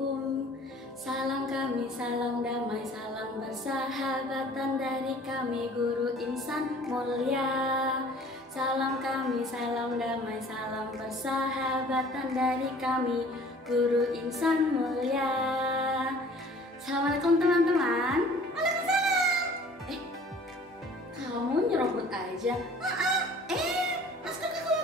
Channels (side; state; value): both; normal; correlation 0.50